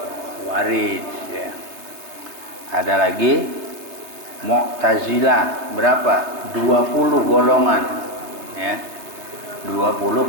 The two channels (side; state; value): left; late; 3.3 ms